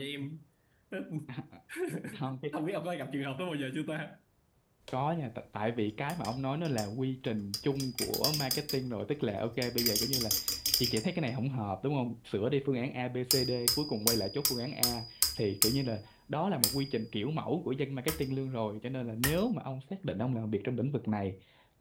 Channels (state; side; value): identical; both; correlation 1.00